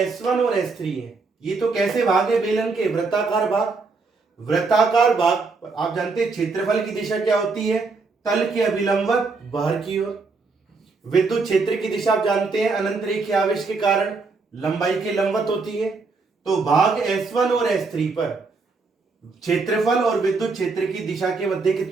और S3 है, ये तो कैसे भाग है बेलन के? वृत्ताकार भाग। वृत्ताकार भाग आप जानते हैं क्षेत्रफल की दिशा क्या होती है? तल के अभिलंबवत बाहर की ओर। विद्युत क्षेत्र की दिशा आप जानते हैं अनंत रेखीय आवेश के कारण लंबाई के लंबवत होती है। तो भाग S1 और S3 पर क्षेत्रफल और विद्युत क्षेत्र की दिशा के मध्य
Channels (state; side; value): quieter; left; 4.1 dB